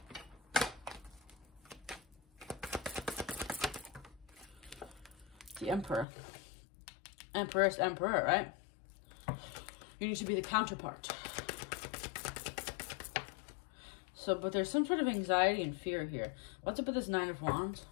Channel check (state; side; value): drops out; right; at 6.1 s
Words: The Emperor. Empress, Emperor, right? You need to be the counterpart. So, but there's some sort of anxiety and fear here. What's up with this 9 of Wands?